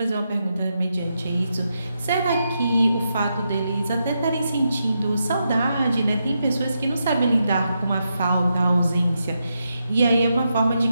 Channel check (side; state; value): both; inverted; correlation -0.84